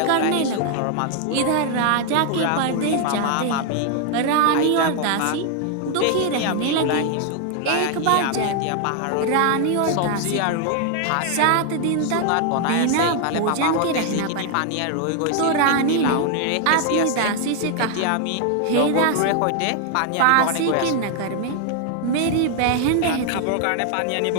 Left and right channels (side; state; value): both; different; correlation 0.00